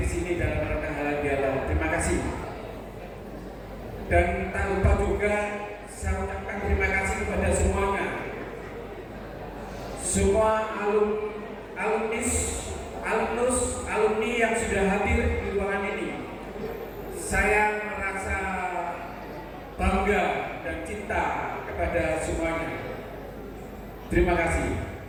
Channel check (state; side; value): identical; both; correlation 1.00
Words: sini dalam rangka halal bihalal. Terima kasih. Dan tak lupa juga saya ucapkan terima kasih kepada semuanya, semua alumni yang sudah hadir di ruangan ini. Saya merasa bangga dan cinta kepada semuanya. Terima kasih.